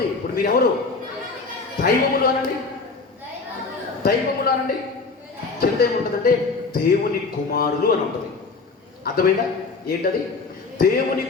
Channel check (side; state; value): right; quieter; 4.2 dB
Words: ఇప్పుడు మీరెవరు? దైవములు అనండి. కింద ఏముంటుందంటే దేవుని కుమారులు అని ఉంటుంది. అర్థమైందా? ఏంటది? దేవుని